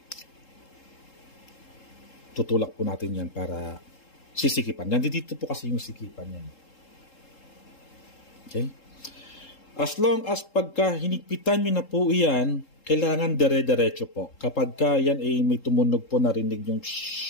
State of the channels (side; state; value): right; late; 3.7 ms